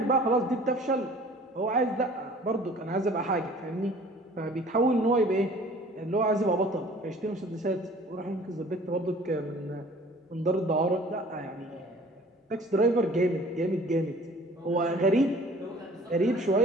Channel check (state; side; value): normal; both; correlation 0.50